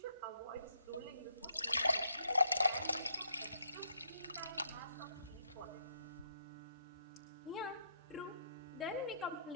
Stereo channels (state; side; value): inverted; both; correlation -0.75